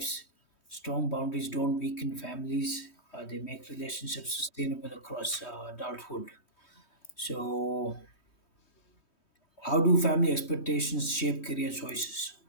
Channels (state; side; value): late; right; 3.2 ms